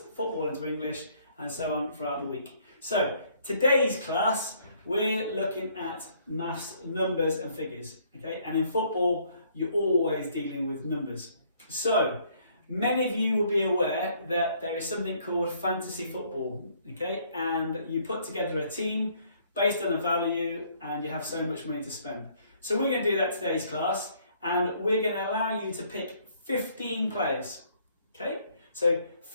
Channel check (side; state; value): both; inverted; correlation -0.64